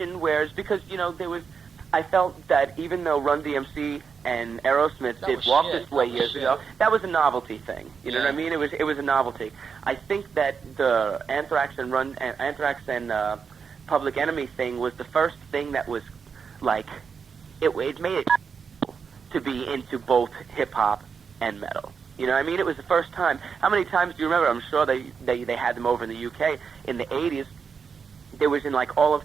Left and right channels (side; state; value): left; quieter; 6.1 dB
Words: whereas because, you know, I felt that even though Run DMC and Aerosmith That did was Walk shit. This Way That was years shit. ago, that was a novelty thing. You know what I Yeah. mean? It was a novelty. I think that the Anthrax and Public Enemy thing was the first thing that was like it made it to be into both hip hop and metal. You know what I mean? It was the first time. How many times do you remember? I'm sure they had them over in the UK in the 80s. There was in like all of